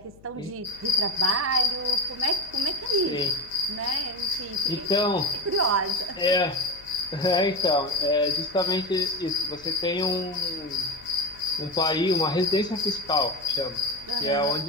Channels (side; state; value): left; noise; hum, 24 dB below the sound